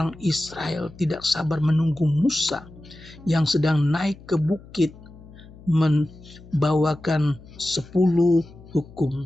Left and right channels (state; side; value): noise; left; hum, 20 dB below the sound